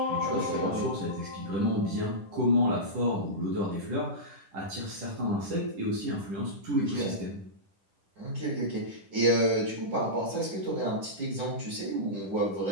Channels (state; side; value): late; left; 10 ms